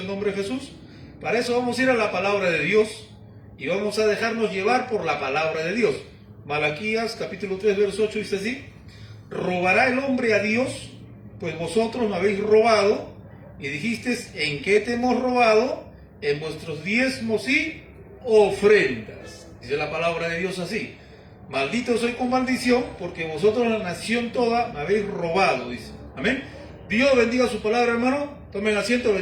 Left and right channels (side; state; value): both; identical; correlation 1.00